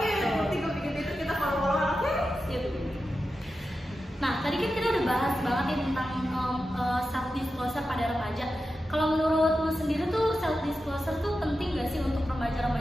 nanti gue bikin Twitter, kita follow-followan. Oke. Nah, tadi kan kita udah bahas banget ya tentang self disclosure pada remaja. Kalau menurut lu sendiri tuh self disclosure tuh penting gak sih untuk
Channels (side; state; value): both; normal; correlation 0.91